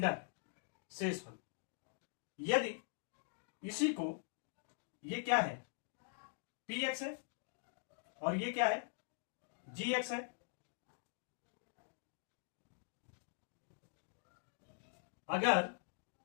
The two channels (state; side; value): silent; right; digital silence